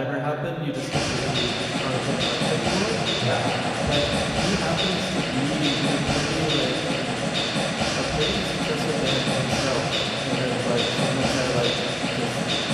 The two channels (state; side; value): identical; both; correlation 1.00